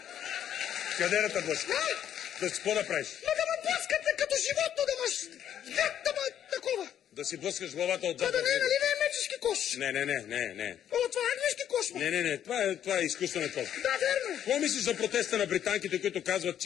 Къде да те блъска? Да си какво да правиш? Но да ме блъскате като животно, да маш... Да ме такова. Да си блъскаш главата отзад. Това да не е, нали не е мечешки кош? Не. О, това е английски кош, ма. Не. Това е изкуствен кош. Да, верно. Какво мислиш за протеста на британките, които казват,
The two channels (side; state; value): right; quieter; 10.1 dB